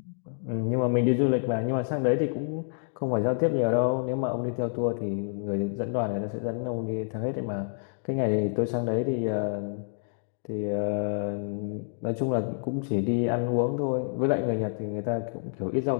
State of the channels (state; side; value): silent; right; digital silence